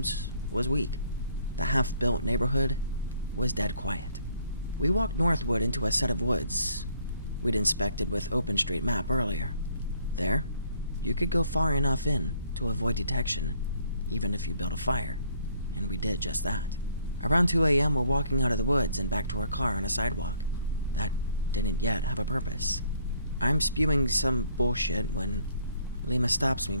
was weak. The half-built neighborhood was dead quiet. We walked northward into a set of woods we'd inspected with OpenStreetMap earlier. There, you could go far enough in to avoid detection, even if you built a fire, and we did just that. Around 2 a.m., we're walking out of the woods and back to our car on a sidewalk that didn't yet have a purpose. I'm spewing some bullshit when Lima stops me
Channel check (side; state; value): both; inverted; correlation -0.64